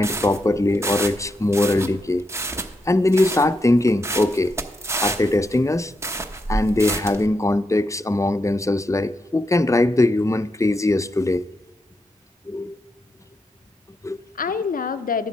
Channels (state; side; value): normal; both; correlation 0.83